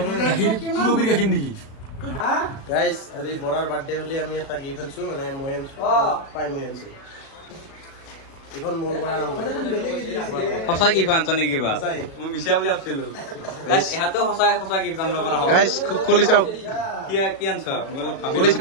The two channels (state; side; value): late; right; 36 ms